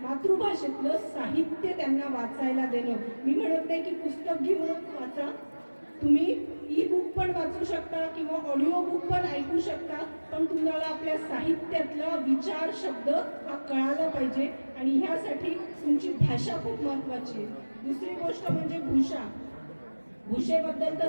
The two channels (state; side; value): inverted; both; correlation -1.00